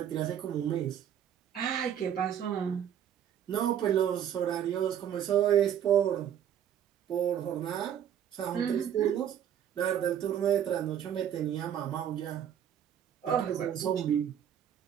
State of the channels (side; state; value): left; quieter; 9.6 dB